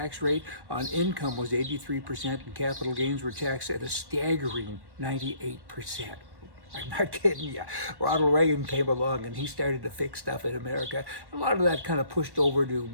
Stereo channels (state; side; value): late; left; 1.1 ms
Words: rate on income was 83%, and capital gains were taxed at a staggering 98%. I'm not kidding you. Ronald Reagan came along and he started to fix stuff in America. A lot of that kind of pushed over to